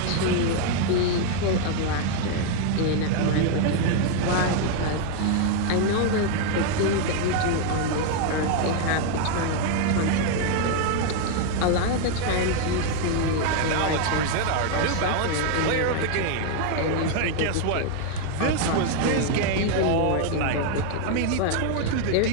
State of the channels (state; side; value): different; both; correlation 0.00